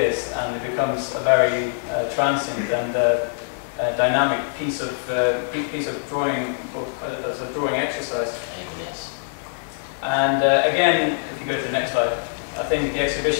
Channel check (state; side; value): silent; right; digital silence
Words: and it becomes a very transient and dynamic piece of drawing, as a drawing exercise. And again, if you go to the next slide, I think the